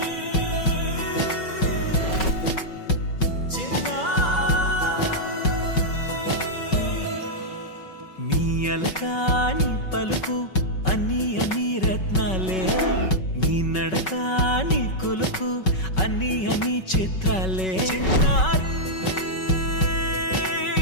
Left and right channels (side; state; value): right; late; 5.3 ms